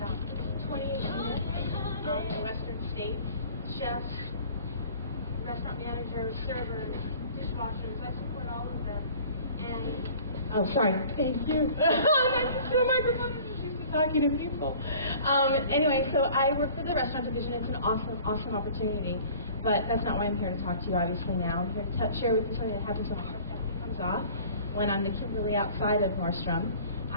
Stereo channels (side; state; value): both; inverted; correlation -0.47